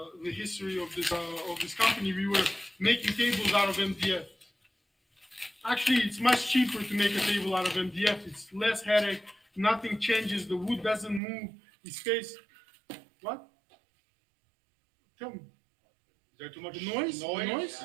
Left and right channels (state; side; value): drops out; left; at 11.2 s